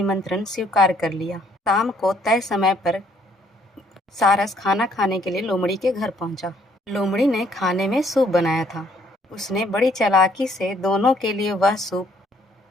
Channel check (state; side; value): normal; both; correlation 0.65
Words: स्वीकार कर लिया। शाम को तय समय पर सारस खाना खाने के लिए लोमड़ी के घर पहुंचा। लोमड़ी ने खाने में सूप बनाया था। उसने बड़ी चालाकी से दोनों के लिए वह सूप